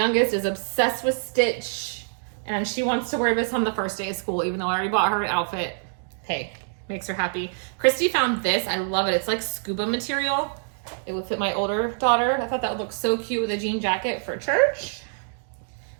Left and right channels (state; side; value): silent; left; digital silence